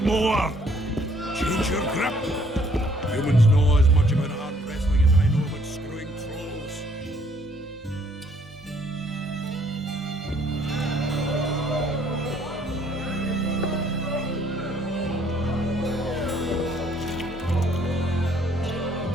more! Change your grip! Humans know as much about arm wrestling as I know about screwing trolls.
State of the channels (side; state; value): both; normal; correlation 0.64